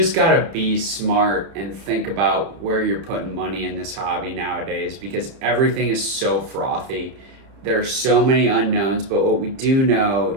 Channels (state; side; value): late; left; 30 ms